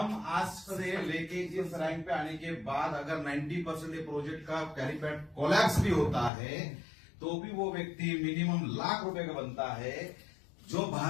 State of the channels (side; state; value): right; drops out; at 6.3 s